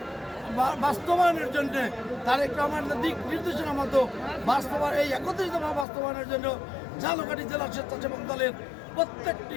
বাস্তবায়নের জন্য তারেক রহমানের দিক নির্দেশনা মতো এই 31 দফা বাস্তবায়নের জন্য ঝালকাঠি জেলা স্বেচ্ছাসেবক দলের প্রত্যেকটি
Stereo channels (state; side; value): drops out; right; at 5.9 s